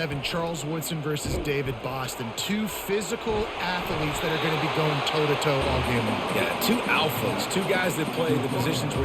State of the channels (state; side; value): identical; both; correlation 1.00